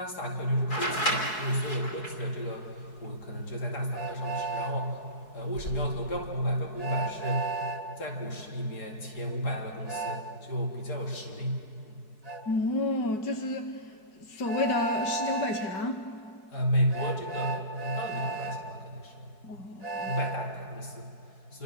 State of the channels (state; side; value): late; right; 4.7 ms